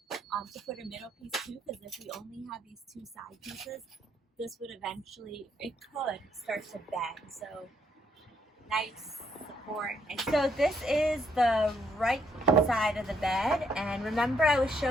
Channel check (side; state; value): both; normal; correlation 0.72